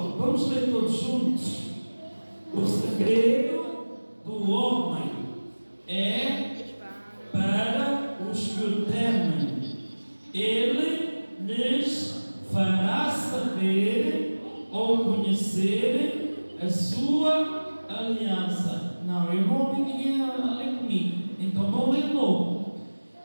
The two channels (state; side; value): inverted; both; correlation -1.00